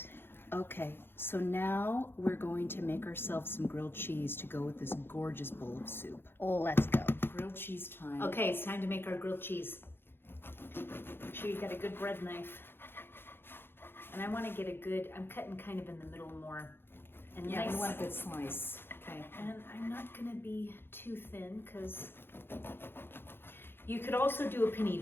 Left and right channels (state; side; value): late; right; 0.10 ms